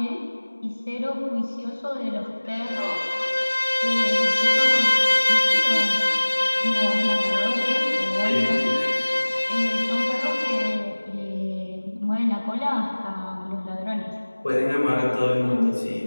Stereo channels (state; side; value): inverted; both; correlation -1.00